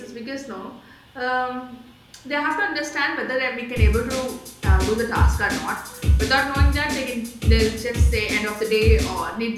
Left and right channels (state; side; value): identical; both; correlation 1.00